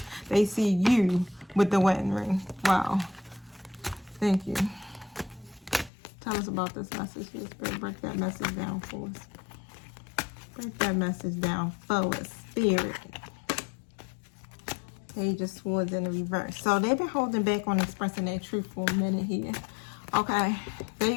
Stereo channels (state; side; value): drops out; right; at 5.9 s